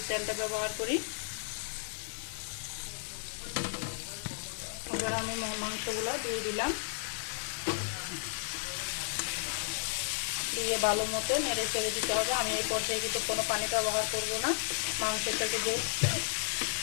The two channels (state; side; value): silent; right; digital silence